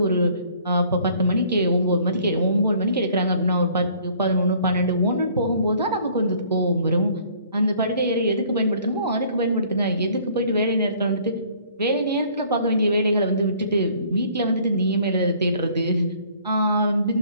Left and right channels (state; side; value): inverted; both; correlation -0.56